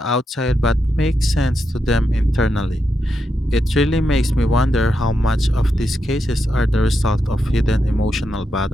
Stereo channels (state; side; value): normal; both; correlation 0.84